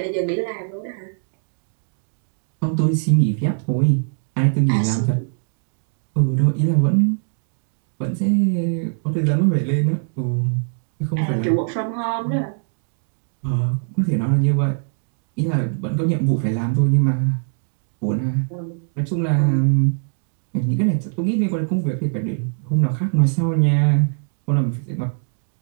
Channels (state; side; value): silent; left; digital silence